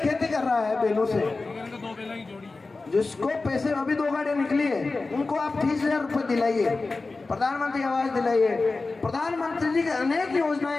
कर रहा है, बैलों से, जिसको पैसे अभी 2 गाड़ियां निकली है, उनको आप 30,000 रुपए दिलाइए, प्रधानमंत्री आवास दिलाइए। प्रधानमंत्री जी की अनेक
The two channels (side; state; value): right; quieter; 3.6 dB